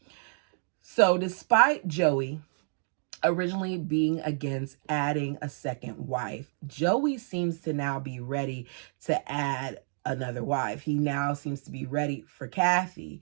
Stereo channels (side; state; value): left; silent; digital silence